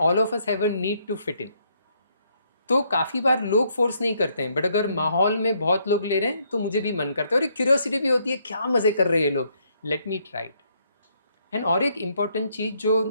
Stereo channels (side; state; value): both; inverted; correlation -0.71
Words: of us have a need to fit in. तो काफ़ी बार लोग फोर्स नहीं करते हैं, बट अगर माहौल में बहुत लोग ले रहे हैं तो मुझे भी मन करता है और एक क्यूरियोसिटी भी होती है, क्या मज़े कर रहे हैं ये लोग, let me try it. And और एक इम्पॉर्टेंट चीज़ जो